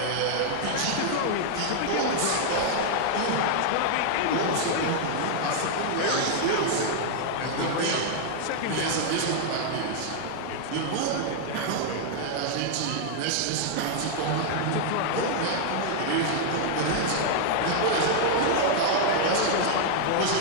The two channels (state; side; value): different; both; correlation 0.00